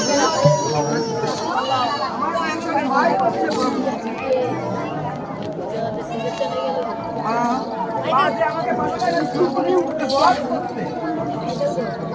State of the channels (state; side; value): identical; both; correlation 1.00